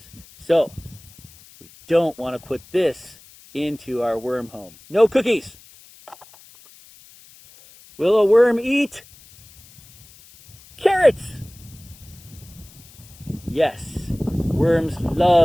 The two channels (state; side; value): noise; left; hiss, 24 dB below the sound